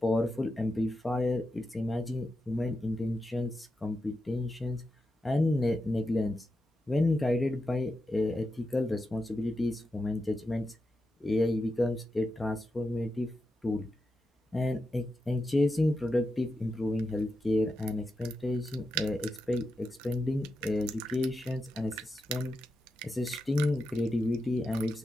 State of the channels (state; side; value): normal; both; correlation 0.88